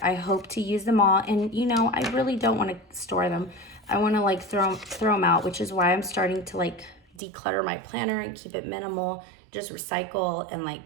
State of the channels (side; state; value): left; drops out; at 7.2 s